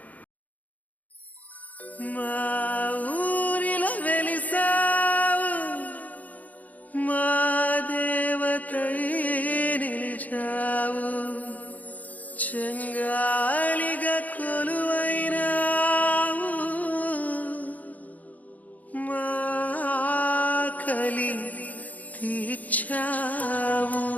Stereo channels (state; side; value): late; right; 0.077 ms